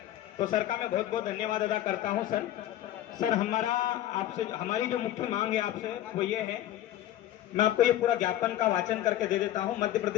तो सर का मैं बहुत बहुत धन्यवाद अदा करता हूं। सर हमारी जो मुख्य मांग है आपसे वो ये है, मैं आपको ये पूरा ज्ञापन का वाचन करके दे देता हूं। मध्य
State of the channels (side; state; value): right; quieter; 13.1 dB